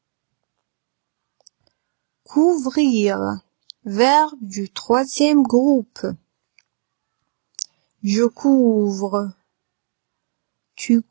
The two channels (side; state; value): left; silent; digital silence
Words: Couvrir, verbe du troisième groupe. Je couvre, tu